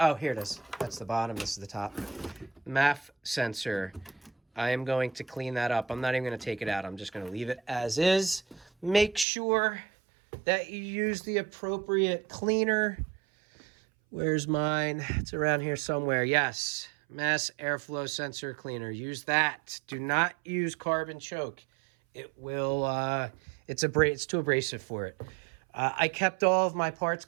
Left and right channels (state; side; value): drops out; left; at 9.2 s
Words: here it is. That's the bottom. This is the top. MAF sensor. I am going to clean that up. I'm not even going to take it out. I'm just going to leave it as is. Make sure that you use the appropriate cleaner. Where's mine? It's around here somewhere. Yes. Mass airflow sensor cleaner. Use that. Do not use carbon choke. It will, it's too abrasive for it. I kept all of my parts